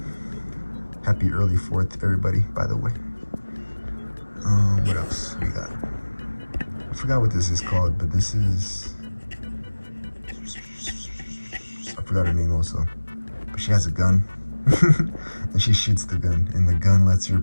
Happy early 4th, everybody, by the way. What else we got? I forgot what this is called, but this is... I forgot her name also. But she has a gun, and she shoots the gun, and the gun lets her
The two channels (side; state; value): both; inverted; correlation -1.00